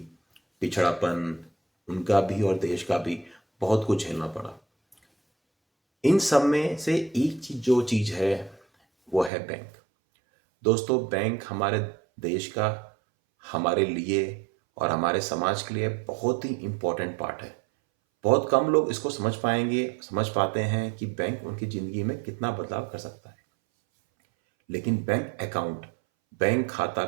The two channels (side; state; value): left; drops out; at 9.3 s